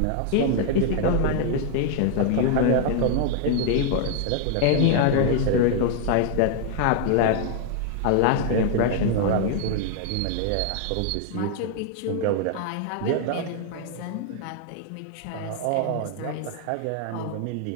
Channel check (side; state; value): both; different; correlation 0.00